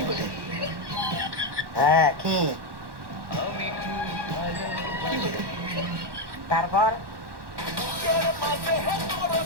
হ্যাঁ কি তারপর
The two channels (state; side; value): late; left; 1.1 ms